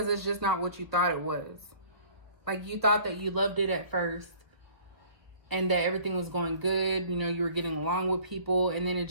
it's just not what you thought it was. Like, you thought that you loved it at first and that everything was going good. You know, you were getting along with people, and then it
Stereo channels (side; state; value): left; late; 1.2 ms